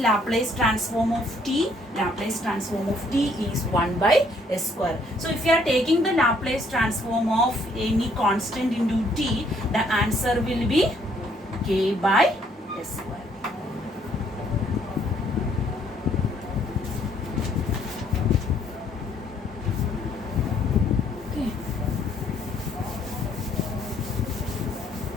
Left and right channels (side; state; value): both; normal; correlation 0.66